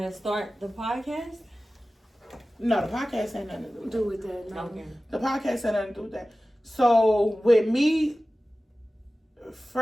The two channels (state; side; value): normal; both; correlation 0.96